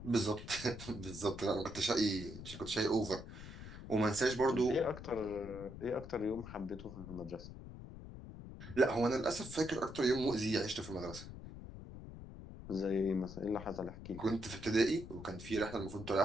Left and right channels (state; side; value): noise; left; rumble, 12 dB below the sound